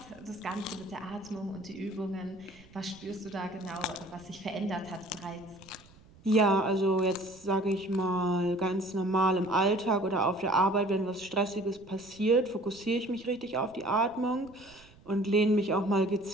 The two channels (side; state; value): right; noise; rumble, 25 dB below the sound